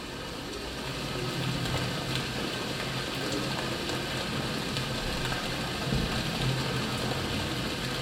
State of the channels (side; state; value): both; identical; correlation 1.00